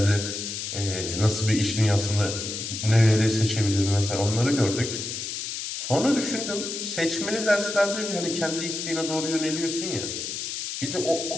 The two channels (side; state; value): left; noise; hiss, 5 dB below the sound